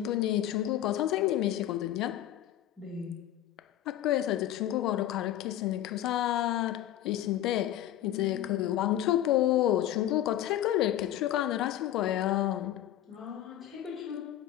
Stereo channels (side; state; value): right; quieter; 12.5 dB